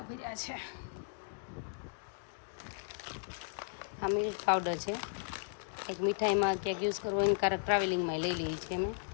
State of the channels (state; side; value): silent; right; digital silence